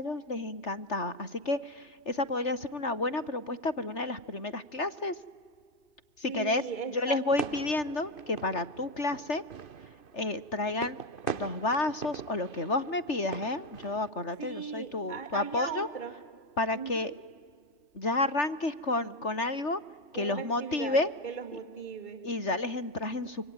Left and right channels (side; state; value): right; late; 3.4 ms